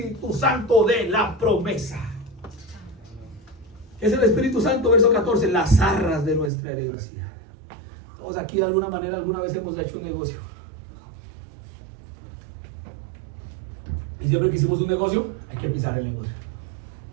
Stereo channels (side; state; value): left; drops out; at 6.5 s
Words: Santo de la promesa. ¿Qué es el Espíritu Santo? Verso 14, las arras de nuestra herencia. Todos aquí de alguna manera, alguna vez hemos hecho un negocio. Y siempre que hicimos un negocio, hay que pisar el negocio.